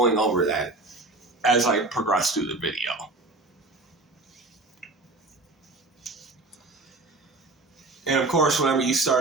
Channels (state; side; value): quieter; left; 3.1 dB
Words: over that as I progress through the video. And of course, whenever you